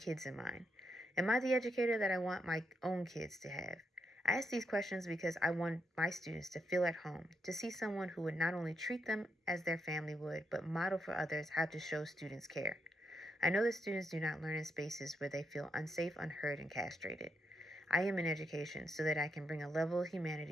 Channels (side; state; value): both; normal; correlation 0.81